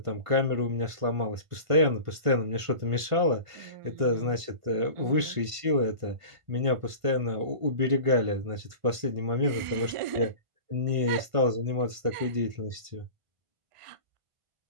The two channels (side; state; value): left; late; 1.5 ms